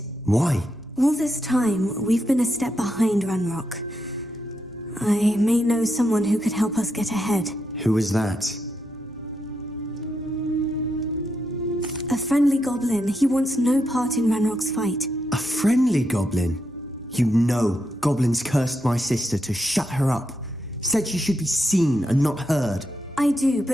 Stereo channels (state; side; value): normal; both; correlation 0.82